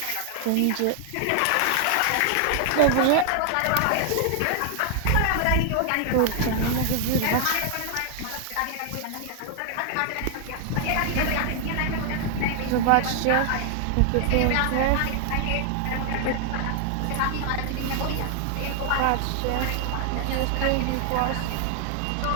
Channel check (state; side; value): different; both; correlation 0.00